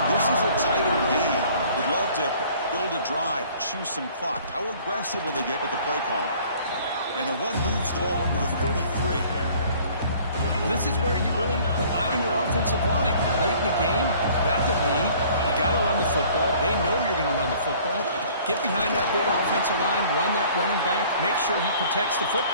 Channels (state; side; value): inverted; both; correlation -0.53